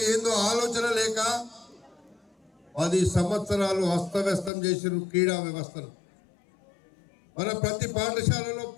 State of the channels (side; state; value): right; drops out; at 4.5 s